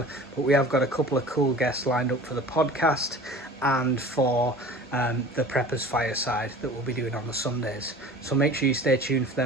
but we have got a couple of cool guests lined up for the podcast and for the Preppers Fireside that we'll be doing on the Sundays. So make sure you stay tuned for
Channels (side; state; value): both; normal; correlation 0.42